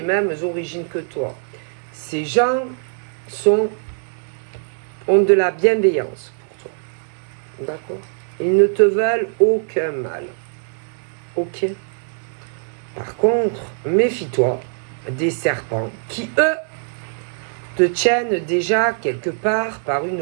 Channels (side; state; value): left; silent; digital silence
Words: mêmes origines que toi. Ces gens ont de la bienveillance pour toi. D'accord? Ils ne te veulent aucun mal. Ok? Par contre, méfie-toi des serpents qui, eux, te tiennent déjà quelque part par